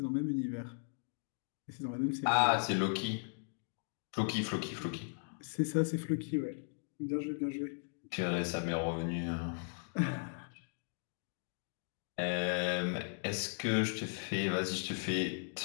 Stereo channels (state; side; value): silent; right; digital silence